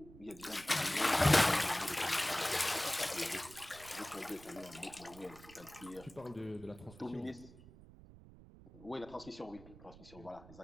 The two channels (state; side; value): noise; right; rumble, 19 dB below the sound